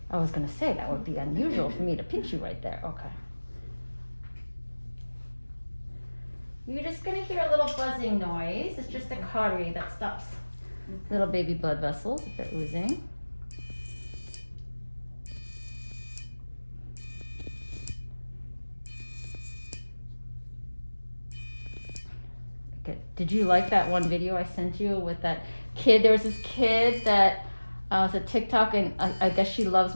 I was gonna say that would be unusual for me to pinch you right there. Okay. You're just gonna hear a little buzzing noise. It's just a cautery that stops little baby blood vessels if they're oozing. Okay. Did you like that one video I sent you with that kid? There was this kid that was a TikTok, and I guess she loves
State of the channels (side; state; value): both; inverted; correlation -1.00